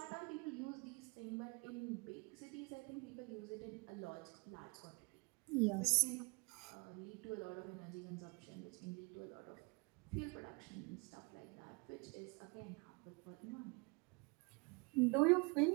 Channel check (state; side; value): quieter; left; 30.4 dB